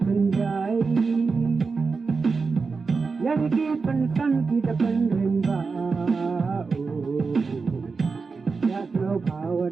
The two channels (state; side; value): quieter; left; 4.6 dB